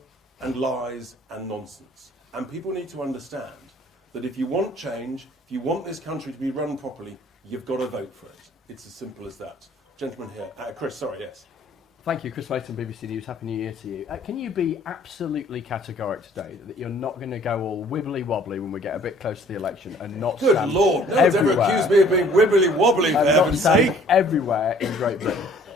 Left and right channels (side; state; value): both; normal; correlation 0.56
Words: and lies and nonsense. And people need to understand that if you want change, if you want this country to be run properly, you've got to vote for it. It's as simple as that. Gentleman here. Chris, sorry, yes. Thank you, Chris Layton, BBC News. Happy New Year to you. Can you be absolutely categoric today that you're not going to go all wibbly-wobbly when we get a bit close to the election and not Good stand Lord, no one's ever accused me of being wibbly-wobbly, for and not heaven's stand sake. everywhere in Great Britain?